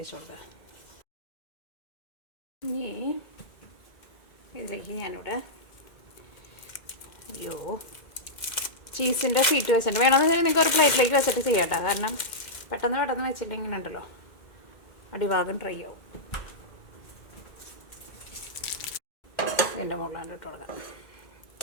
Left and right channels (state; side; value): late; right; 2.1 ms